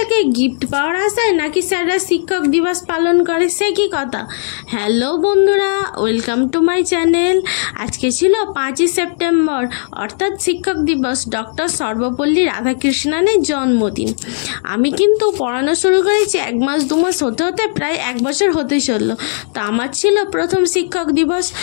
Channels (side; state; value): right; silent; digital silence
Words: গিফট পাওয়ার আশায় নাকি স্যাররা শিক্ষক দিবস পালন করে, সে কি কথা। হ্যালো বন্ধুরা, ওয়েলকাম টু মাই চ্যানেল। আজকে ছিল 5ই সেপ্টেম্বর, অর্থাৎ শিক্ষক দিবস, ডক্টর সর্বপল্লী রাধাকৃষ্ণনের জন্মদিন। আমি কিন্তু পড়ানো শুরু করেছি 1 মাস 2 মাস হতে হতে প্রায় 1 বছর হতে চললো। তো আমার ছিল প্রথম শিক্ষক দিবস।